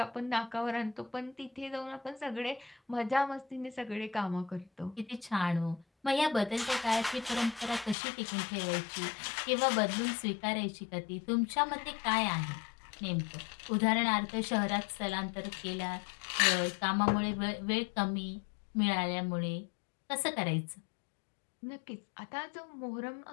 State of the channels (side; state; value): right; drops out; at 8.0 s